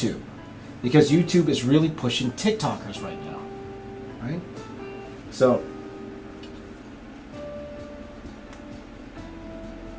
because YouTube is really pushing TikTokers right now, right? So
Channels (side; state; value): both; identical; correlation 1.00